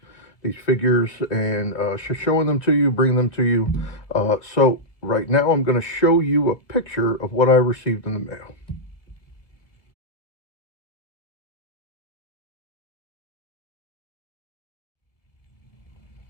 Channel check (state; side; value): late; right; 1.9 ms